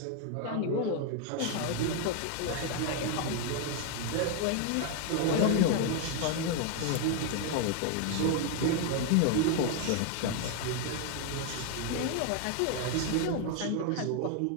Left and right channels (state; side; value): different; both; correlation 0.01